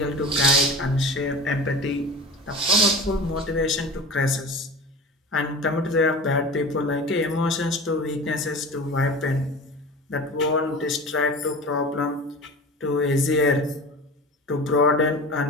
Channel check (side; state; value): both; normal; correlation 0.34